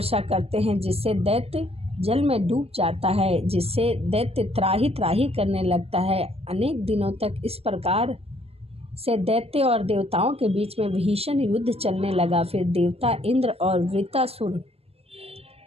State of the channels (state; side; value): late; left; 0.29 ms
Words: करते हैं जिससे दैत्य जल में डूब जाता है, जिससे दैत्य त्राही त्राही करने लगता है। अनेक दिनों तक इस प्रकार से दैत्य और देवताओं के बीच में भीषण युद्ध चलने लगा। फिर देवता इंद्र और वृत्रासुर